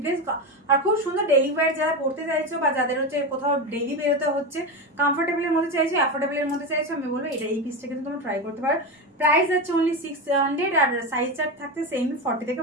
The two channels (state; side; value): normal; both; correlation 0.17